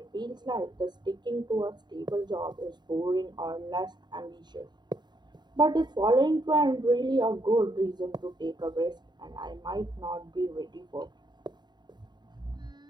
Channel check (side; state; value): left; late; 0.21 ms